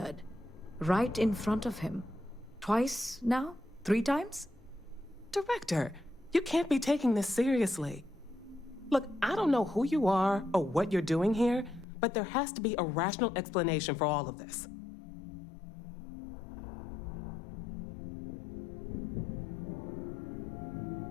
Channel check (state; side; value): drops out; right; at 11.9 s